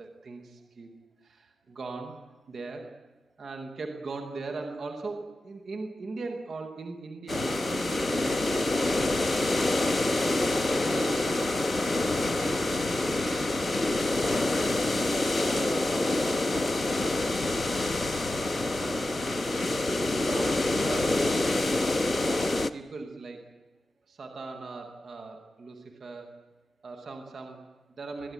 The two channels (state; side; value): normal; both; correlation 0.92